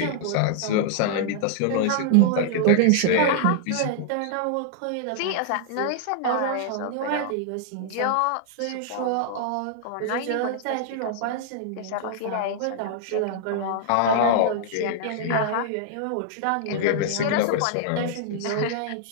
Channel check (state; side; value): different; both; correlation -0.01